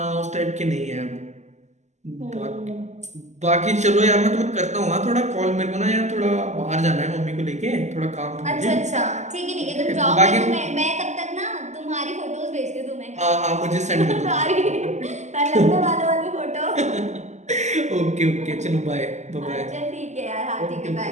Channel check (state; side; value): late; left; 0.33 ms